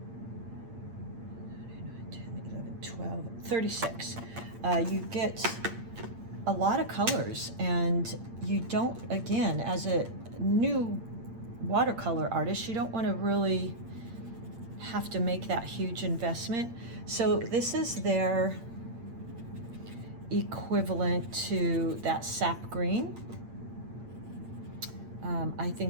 10, 11, 12, 36. You get a lot of colors, and you don't, again, as a new watercolor artist, you don't want to really have to make that huge investment. So this is their equivalent to that sap green. I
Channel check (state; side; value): late; left; 8.7 ms